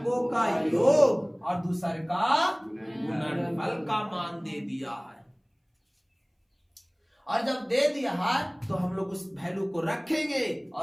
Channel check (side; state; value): both; identical; correlation 1.00